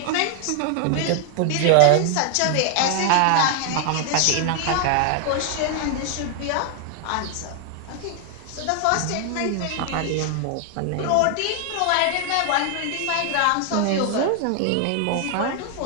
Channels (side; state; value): both; different; correlation 0.00